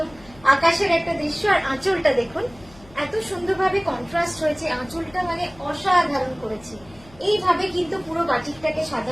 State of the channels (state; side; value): noise; left; hum, 24 dB below the sound